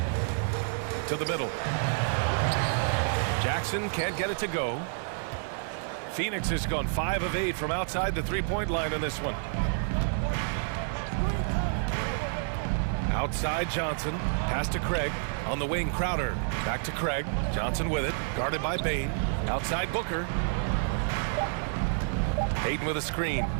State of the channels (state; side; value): silent; left; 58 dB below the other